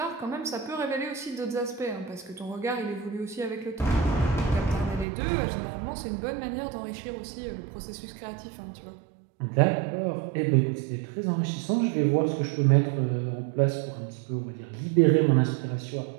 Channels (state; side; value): drops out; left; at 5.1 s